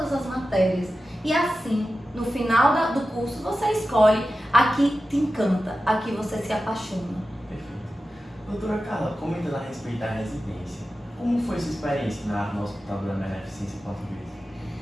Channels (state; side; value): normal; both; correlation 0.93